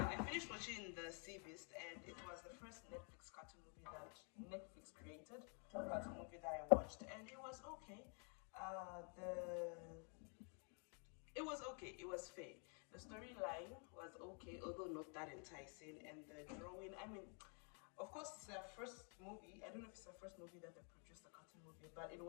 I finished watching The Sea Beast, and it was the first Netflix cartoon movie that Netflix created. Cartoon movie that I watched, and it was okay. It was okay. It was fair. The storyline was okay, although not that enticing, and the drawing. I mean, of course, it's their first movie. I don't know if it's the first movie that they produced, a cartoon movie, but it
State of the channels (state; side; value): quieter; right; 39.0 dB